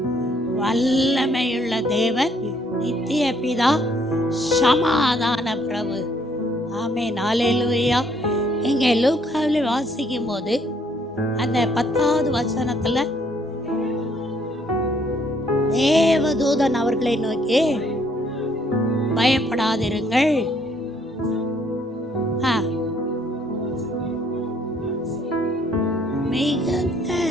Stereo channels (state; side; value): normal; both; correlation 0.66